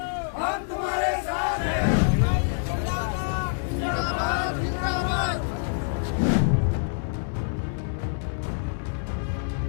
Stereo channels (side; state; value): right; silent; digital silence